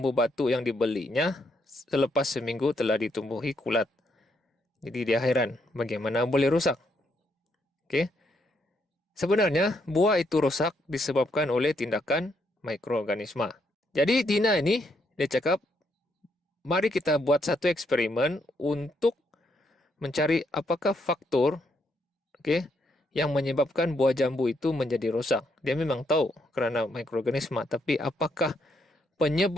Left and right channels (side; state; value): both; normal; correlation 0.75